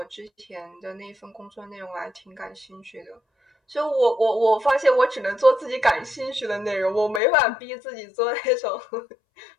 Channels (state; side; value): drops out; right; at 7.2 s